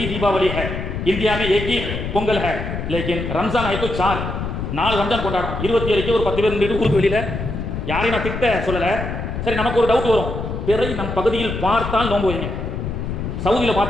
दीपावली है, इंडिया में एक ही பொங்கல் है, लेकिन रमजान है तो 4 ரம்ஜான் கொண்டாடும். 27க்கு ஒரு 10 பேர் நின்று ஊருக்கு வெளியில் யாரையும் நான் திட்ட சொல்லலை. சரி, நமக்கு ஒரு டவுட் வரும், பிறை நம் பகுதியில் பார்த்தால் நோன்பு வைங்க. சவுதியில்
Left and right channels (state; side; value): noise; left; rumble, 5 dB below the sound